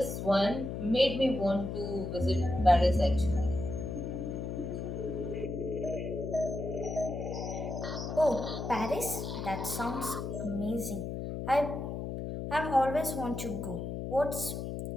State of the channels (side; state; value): left; noise; hum, 5 dB below the sound